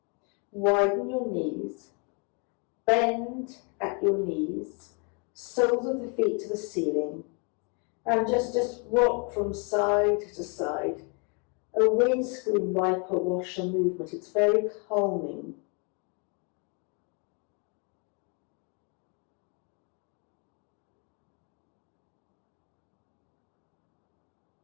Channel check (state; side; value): quieter; right; 35.3 dB